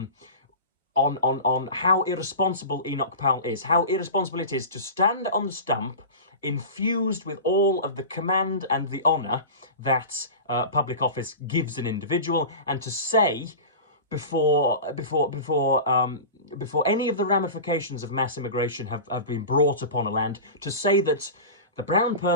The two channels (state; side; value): inverted; both; correlation -0.30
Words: irresponsible Enoch Powell is, how irresponsible it is to stand on the stump infused with all of the command and the honour that public office gives an individual, and to say before any of the ramifications of mass immigration have been brought upon a land, to say that the brown